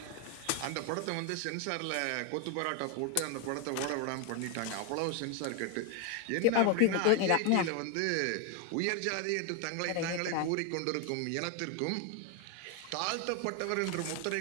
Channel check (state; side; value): different; both; correlation 0.01